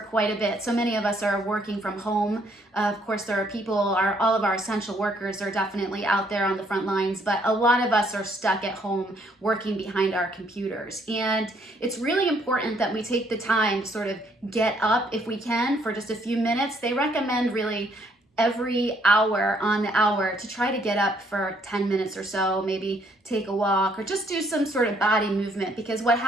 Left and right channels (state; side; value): normal; both; correlation 0.68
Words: a bit. So many of us are working from home. Of course, there are people, all of our essential workers are definitely out there on the front lines, but a lot of us are stuck at home working behind our computers. And it's really important that we take the time to sort of get up if we can for just a few minutes. They recommend really every hour on the hour to try to get up for 10 minutes or so, maybe take a walk or just do some sort of body movement, because what